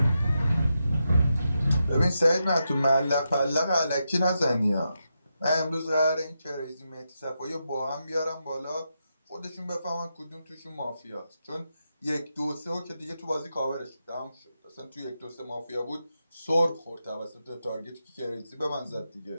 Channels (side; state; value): both; inverted; correlation -0.86